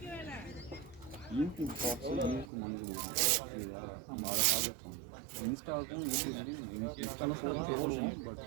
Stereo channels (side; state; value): left; drops out; at 2.5 s